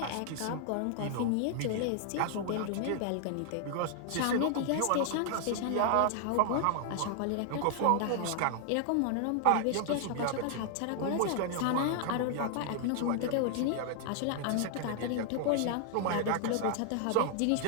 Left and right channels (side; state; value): both; different; correlation 0.00